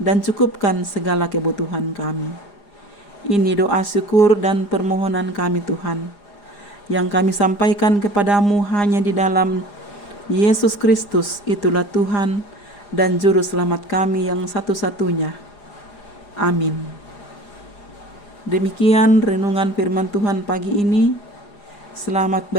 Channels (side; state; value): right; late; 4.9 ms